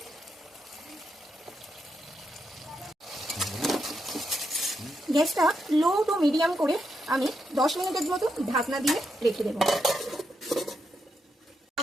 গ্যাসটা লো টু মিডিয়াম করে আমি 10 মিনিটের মতো ঢাকনা দিয়ে রেখে দেবো।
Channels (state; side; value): normal; both; correlation 0.82